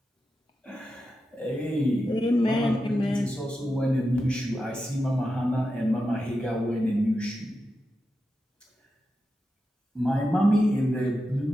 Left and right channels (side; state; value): both; normal; correlation 0.89